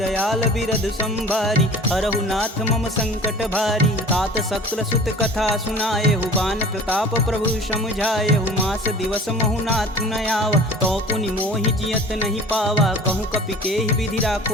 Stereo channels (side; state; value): both; normal; correlation 0.43